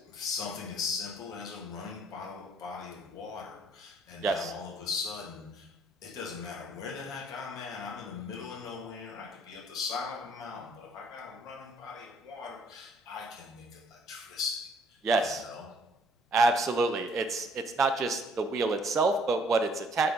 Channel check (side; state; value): both; normal; correlation 0.62